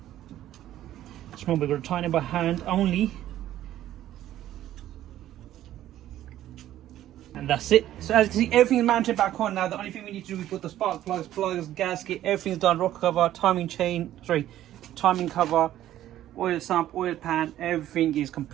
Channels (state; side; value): quieter; left; 12.9 dB